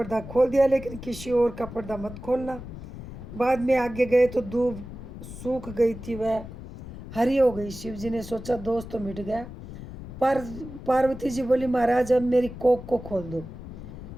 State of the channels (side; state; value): left; noise; rumble, 12 dB below the sound